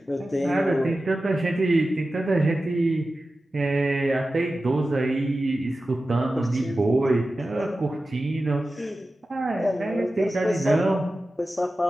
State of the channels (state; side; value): normal; both; correlation 0.94